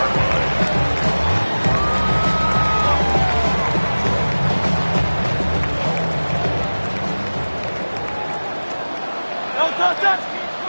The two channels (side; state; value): both; inverted; correlation -1.00